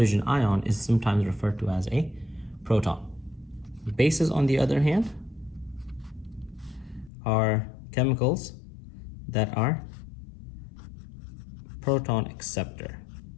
ion is sometimes referred to as a proton. Bases, on the other hand, are chemicals that are proton acceptor.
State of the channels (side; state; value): right; drops out; at 7.1 s